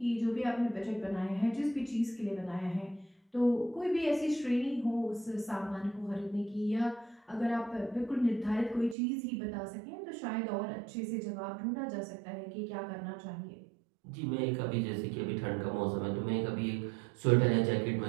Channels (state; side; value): drops out; left; at 9.0 s